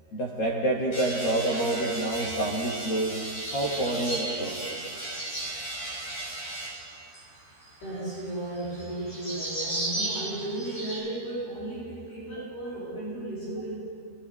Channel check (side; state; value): right; late; 13 ms